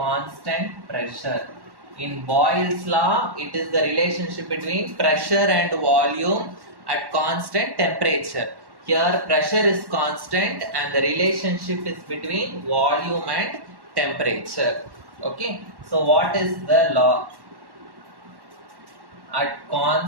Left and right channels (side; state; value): left; late; 1.1 ms